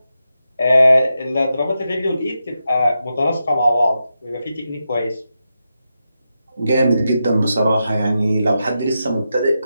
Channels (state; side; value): inverted; both; correlation -0.88